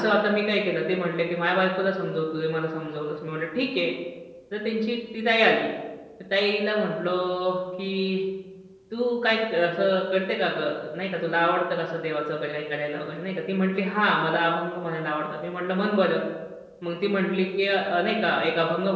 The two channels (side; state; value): both; identical; correlation 1.00